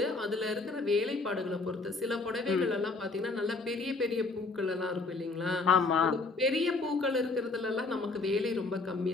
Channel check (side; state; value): right; quieter; 3.6 dB